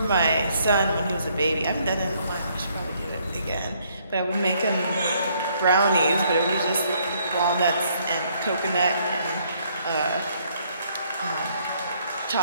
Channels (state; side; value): inverted; both; correlation -0.68